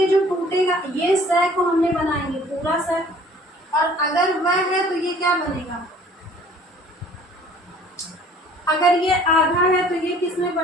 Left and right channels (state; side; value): normal; both; correlation 0.53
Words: जो टूटेगा, ये स को हमने बनाएंगे पूरा स, और अगर वह है तो ये क्या बनेगा, अगर ये आधा है तो ये किस में